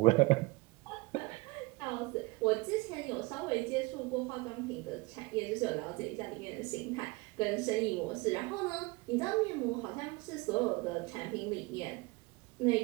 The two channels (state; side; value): quieter; left; 23.7 dB